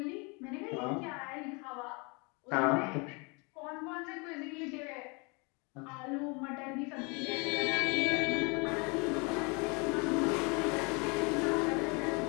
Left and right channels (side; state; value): right; quieter; 30.6 dB